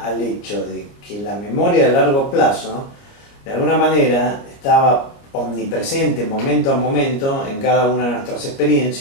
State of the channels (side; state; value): right; late; 29 ms